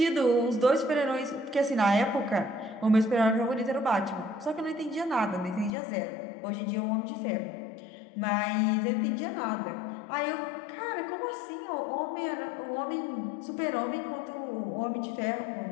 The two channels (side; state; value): right; drops out; at 5.7 s